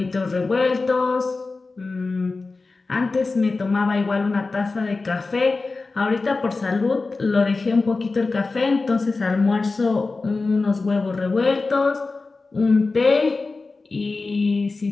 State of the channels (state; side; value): quieter; right; 3.8 dB